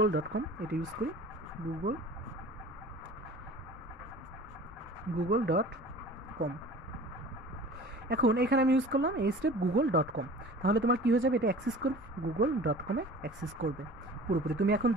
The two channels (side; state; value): both; normal; correlation 0.42